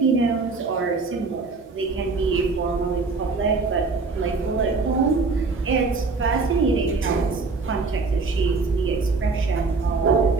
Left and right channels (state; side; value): quieter; left; 4.1 dB